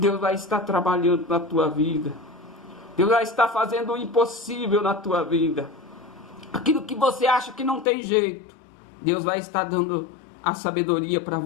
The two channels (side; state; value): right; drops out; at 7.9 s